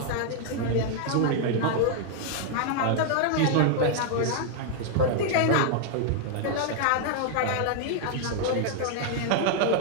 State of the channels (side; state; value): both; different; correlation 0.00